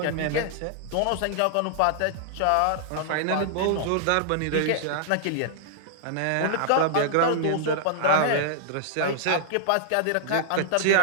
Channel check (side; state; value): both; different; correlation -0.01